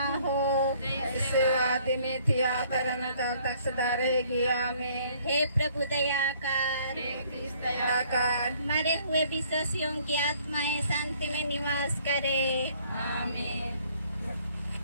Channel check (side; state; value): both; inverted; correlation -0.61